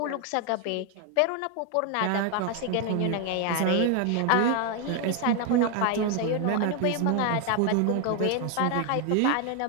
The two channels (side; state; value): both; different; correlation 0.01